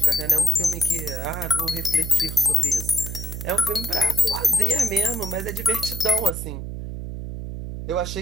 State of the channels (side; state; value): right; noise; hum, 7 dB below the sound